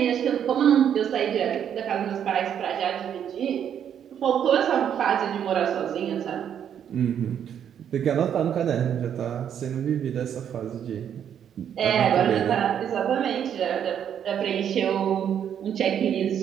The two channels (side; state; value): left; quieter; 9.0 dB